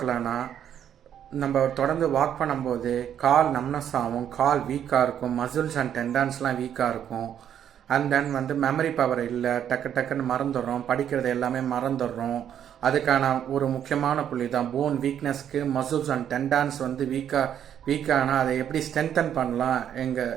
நம்ம தொடர்ந்து வாக் பண்ணும்போது கால் நம்னஸ் ஆகும், கால் வீக்காக இருக்கும், மசில்ஸ் அண்ட் டெண்டான்ஸ்லாம் வீக்காக இருக்கும். அண்ட் தென் மெமரி பவர் இல்லை, டக்குன்னு மறந்துடுறோம், படிக்கிறது எல்லாமே மறந்துடுறோம். அதுக்கான ஒரு முக்கியமான புள்ளி தான் போன் வீக்னஸ்க்கு மசில்ஸ் அண்ட் டெண்டான்ஸ் வீக்கானால் அதை எப்படி ஸ்ட்ரென்தன் பண்ணலாம்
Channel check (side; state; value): left; quieter; 9.6 dB